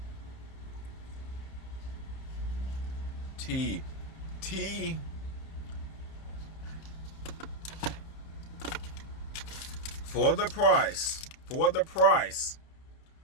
Tea. For the price,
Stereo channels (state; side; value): late; right; 30 ms